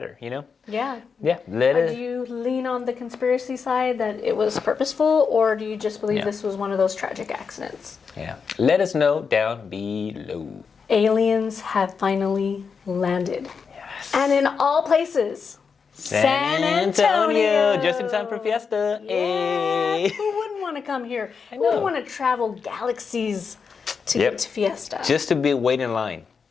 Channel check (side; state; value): right; quieter; 5.7 dB